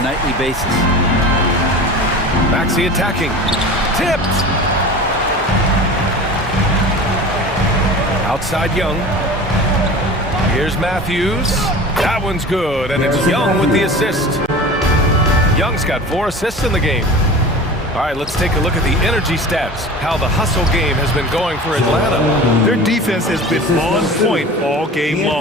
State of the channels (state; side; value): normal; both; correlation 0.36